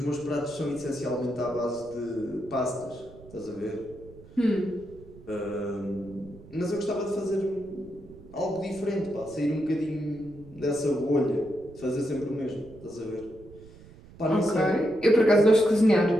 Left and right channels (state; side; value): noise; right; rumble, 21 dB below the sound